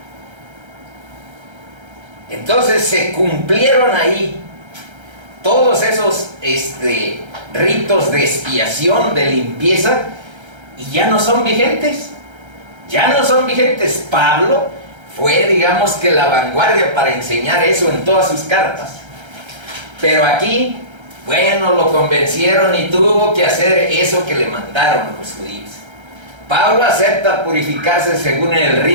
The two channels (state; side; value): late; left; 1.3 ms